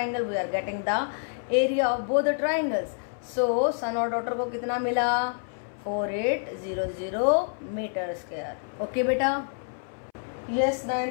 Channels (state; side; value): silent; right; 60 dB below the other